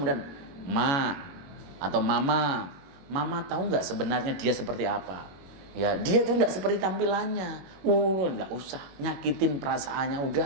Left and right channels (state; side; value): late; left; 21 ms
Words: ma atau mama tahu nggak sebenarnya dia seperti apa? Ya dia tuh nggak seperti tampilannya. Nggak usah nyakitin perasaannya,